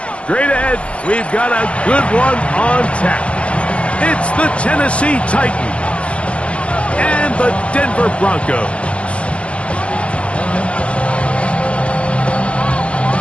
Straight ahead, we've got a good one on tap. It's the Tennessee Titans and the Denver Broncos.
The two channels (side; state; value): right; late; 0.061 ms